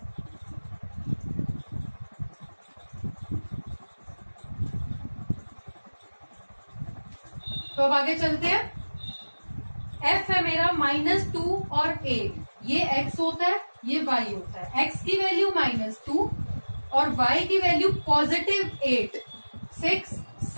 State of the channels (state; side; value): inverted; both; correlation -1.00